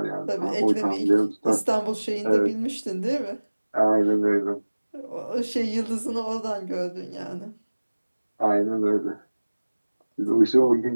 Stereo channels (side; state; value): both; inverted; correlation -1.00